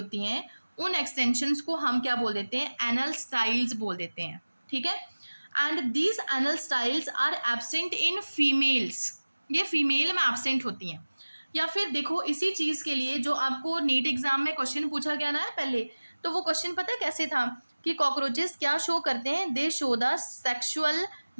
हैं, उन एक्सटेंशंस को हम क्या बोल देते हैं, एनल स्टाइल्स बोल देते हैं, ठीक है। And these anal styles are absent in females, ये फीमेल में एब्सेंट होती हैं। या फिर देखो, इसी चीज़ के लिए जो आपको नीट एग्जाम में क्वेश्चन पूछा गया ना पहले, तो वो क्वेश्चन पता है कैसे था कि कॉकरोचेस क्या शो करते हैं, they show the sexual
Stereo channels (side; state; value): both; inverted; correlation -1.00